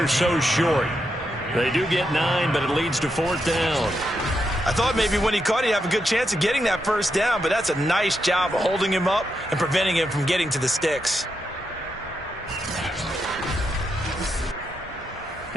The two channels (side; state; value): both; normal; correlation 0.83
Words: so short. They do get 9, but it leads to 4th down. I thought maybe when he caught, he'd have a good chance of getting that 1st down, but that's a nice job of holding him up and preventing him from getting to the sticks.